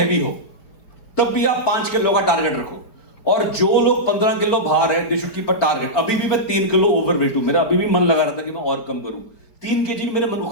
हो, तब भी आप 5 किलो का टारगेट रखो। और जो लोग 15 किलो भार है, they should keep a target. अभी भी मैं 3 किलो ओवरवेट हूं, मेरा अभी भी मन लगा रहा था कि मैं और कम करूं। 3 kg भी मेरे मन को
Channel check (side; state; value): right; late; 4.4 ms